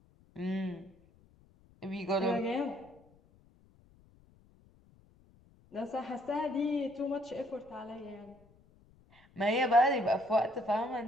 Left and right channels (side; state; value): left; noise; rumble, 29 dB below the sound